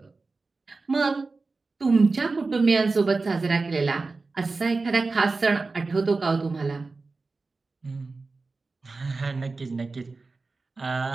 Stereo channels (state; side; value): quieter; left; 3.8 dB